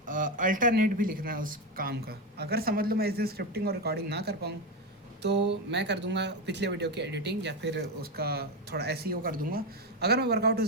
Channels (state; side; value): normal; both; correlation 0.12